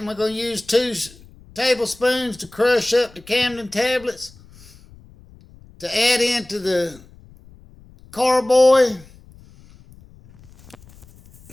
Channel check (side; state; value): left; noise; rumble, 24 dB below the sound